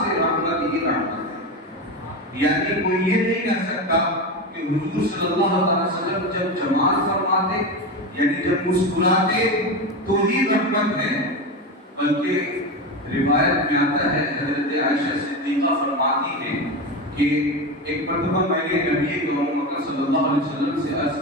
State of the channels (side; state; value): both; normal; correlation 0.19